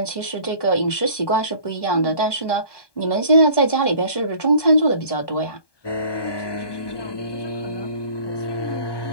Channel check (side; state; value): right; late; 1.2 ms